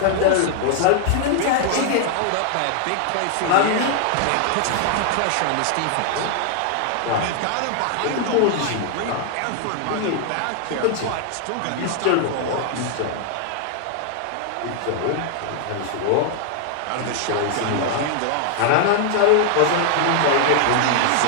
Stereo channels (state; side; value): different; both; correlation 0.00